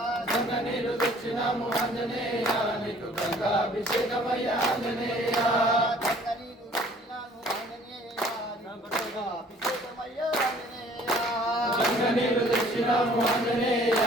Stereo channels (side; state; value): both; normal; correlation 0.55